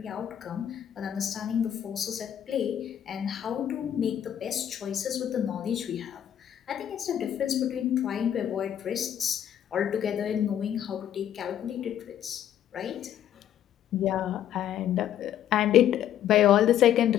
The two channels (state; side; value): quieter; right; 10.4 dB